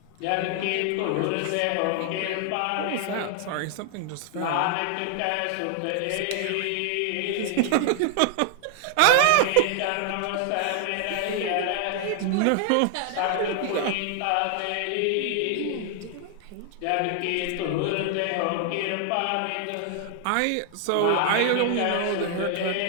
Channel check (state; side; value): different; both; correlation 0.00